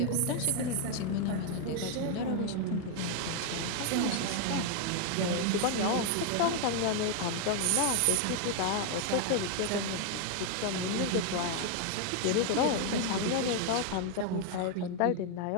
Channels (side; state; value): both; different; correlation 0.00